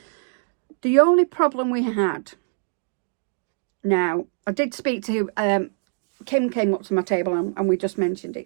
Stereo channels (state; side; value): silent; left; digital silence